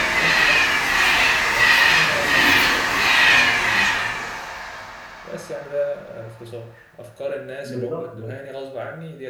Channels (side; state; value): both; identical; correlation 1.00